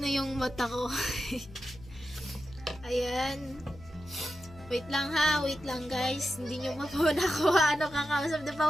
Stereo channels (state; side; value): noise; left; hum, 20 dB below the sound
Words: yung mata ko. Ayan. Wait lang ha, wait lang guys. Hindi nyo mapuna ko kakausap. Di pa